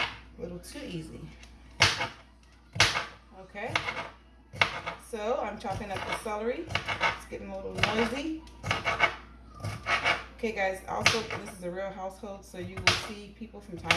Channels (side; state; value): both; identical; correlation 1.00